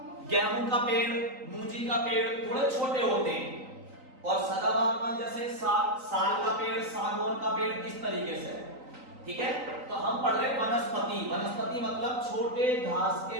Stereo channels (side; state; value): left; late; 3.9 ms